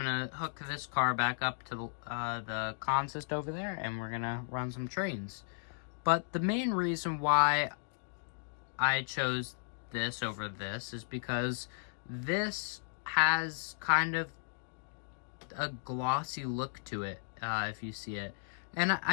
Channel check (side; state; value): right; silent; digital silence